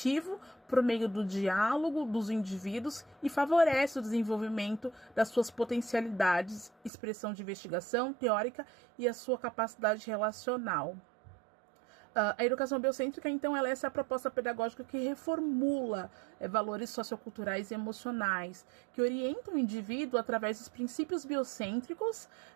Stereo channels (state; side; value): drops out; left; at 6.9 s